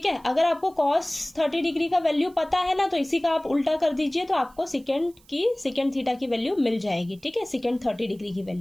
है। अगर आपको cos 30 डिग्री का वैल्यू पता है ना तो इसी का आप उल्टा कर दीजिए तो आपको सेकेंड थीटा की वैल्यू मिल जाएगी, ठीक है। सेकेंड 30 डिग्री की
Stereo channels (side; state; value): right; noise; hiss, 30 dB below the sound